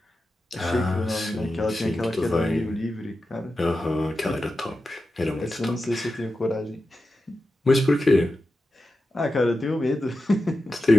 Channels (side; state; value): both; normal; correlation 0.91